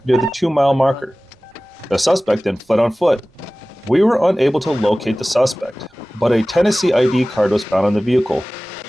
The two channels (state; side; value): normal; both; correlation 0.98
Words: near the 2-mile marker. The suspect then fled on foot. We were unable to locate the suspect, but a Tennessee ID card was found on the vehicle.